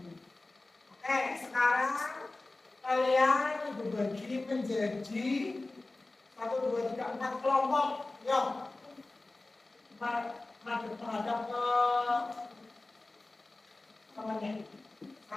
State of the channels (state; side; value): quieter; right; 3.1 dB